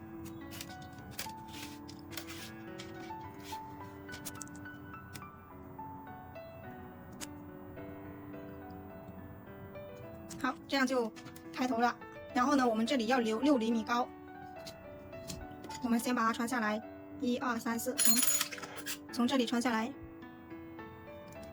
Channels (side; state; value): both; identical; correlation 1.00